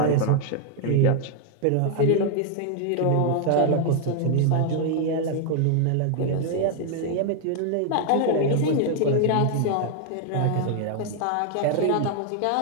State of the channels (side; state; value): both; different; correlation 0.00